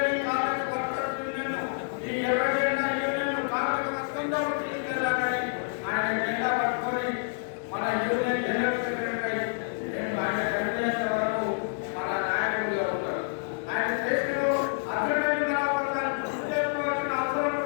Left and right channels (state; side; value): silent; right; digital silence